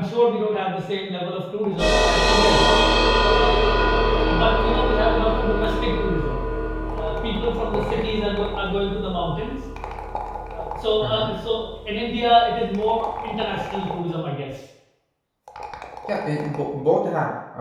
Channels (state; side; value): identical; both; correlation 1.00